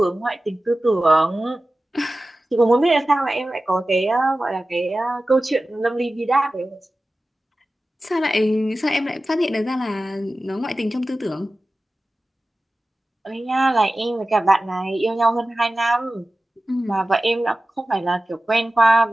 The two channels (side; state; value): both; normal; correlation 0.95